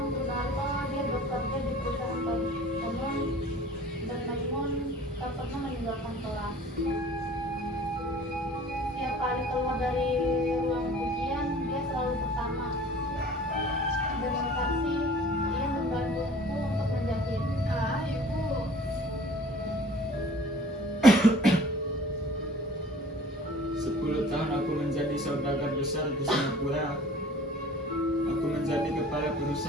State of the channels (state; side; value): normal; both; correlation 0.47